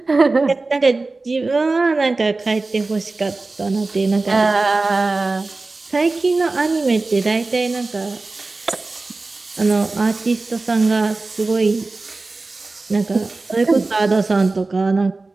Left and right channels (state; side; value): quieter; left; 3.5 dB